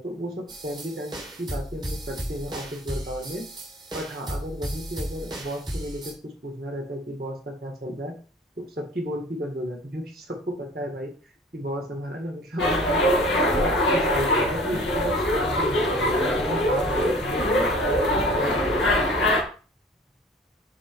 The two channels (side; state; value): both; normal; correlation 0.46